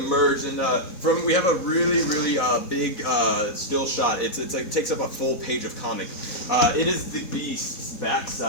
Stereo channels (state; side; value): late; right; 4.0 ms